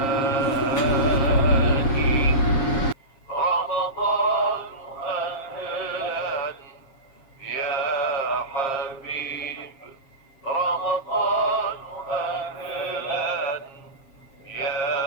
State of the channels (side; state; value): right; late; 7.4 ms